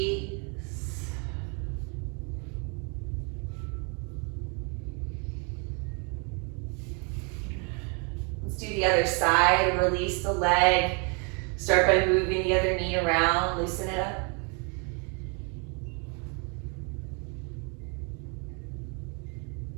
Let's do the other side. Release the leg. Start by moving the other knee around. Loosen it up.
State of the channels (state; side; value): quieter; left; 35.4 dB